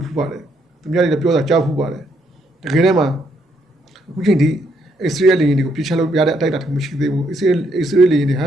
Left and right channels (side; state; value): both; normal; correlation 0.73